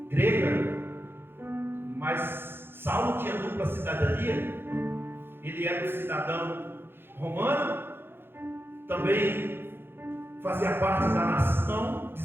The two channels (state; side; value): late; left; 0.10 ms